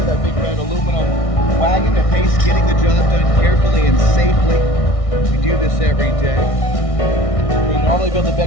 That big red aluminum wagon at pace, getting the job done carefully and safely. We do this every day. We normally build the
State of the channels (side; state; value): right; late; 1.6 ms